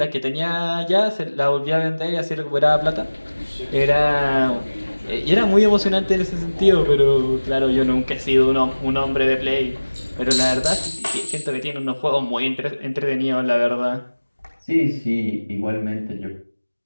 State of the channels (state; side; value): inverted; both; correlation -1.00